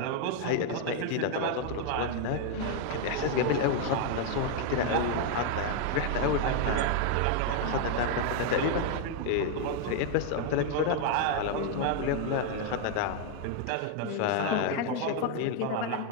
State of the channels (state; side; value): different; both; correlation 0.00